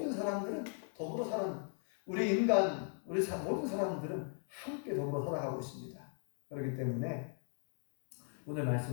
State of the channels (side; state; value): right; silent; 52 dB below the other